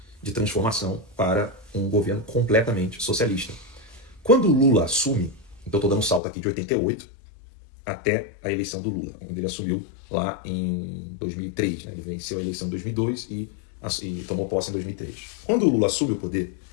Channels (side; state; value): right; drops out; at 6.2 s